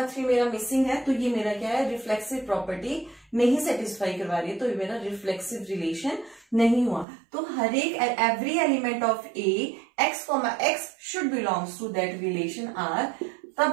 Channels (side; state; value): left; drops out; at 7.1 s